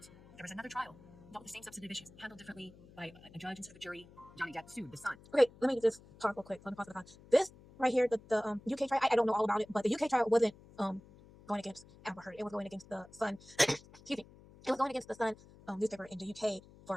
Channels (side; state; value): left; noise; hum, 22 dB below the sound